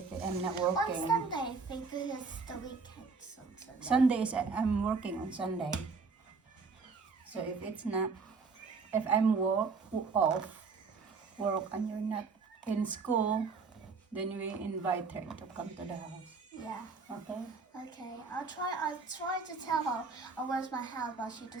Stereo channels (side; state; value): left; quieter; 4.7 dB